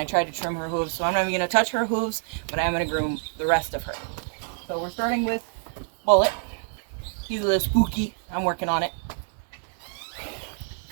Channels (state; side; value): silent; left; 56 dB below the other